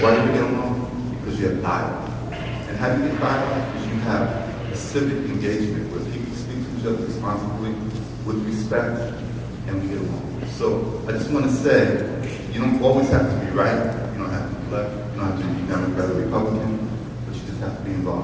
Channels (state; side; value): identical; both; correlation 1.00